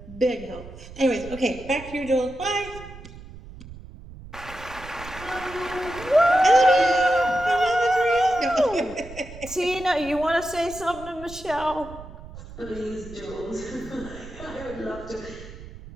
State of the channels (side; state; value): right; noise; rumble, 15 dB below the sound